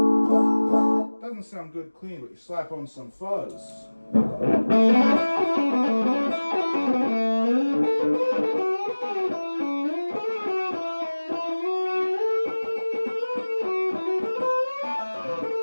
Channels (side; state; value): both; inverted; correlation -1.00